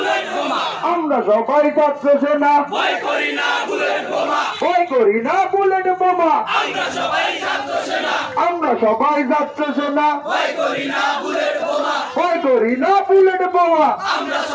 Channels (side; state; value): both; identical; correlation 1.00